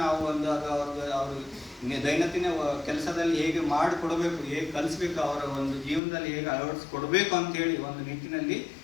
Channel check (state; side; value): drops out; right; at 6.0 s